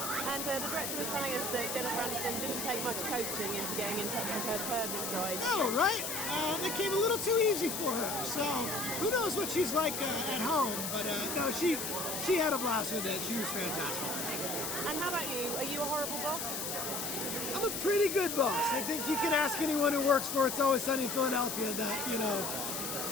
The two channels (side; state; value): left; noise; hiss, 3 dB below the sound